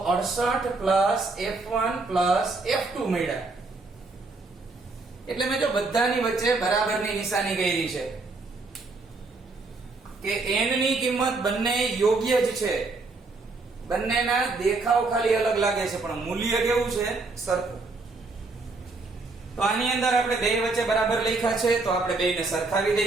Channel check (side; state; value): left; quieter; 3.6 dB